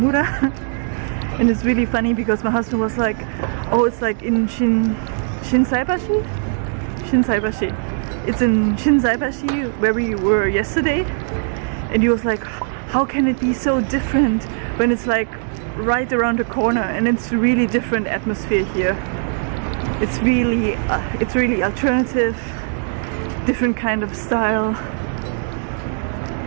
And it's really funny because my husband was like, oh, it's like in Shinsaibashi? Shinsaibashi. It's in Shinsaibashi where we were yesterday. And he was like, how can it be so different when it's like right around the corner? And it's really different atmosphere here. It's really alternative, different kind of style.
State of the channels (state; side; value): silent; left; 66 dB below the other